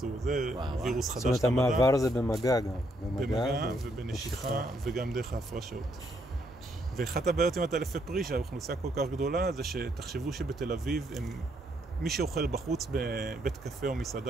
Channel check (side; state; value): both; normal; correlation 0.73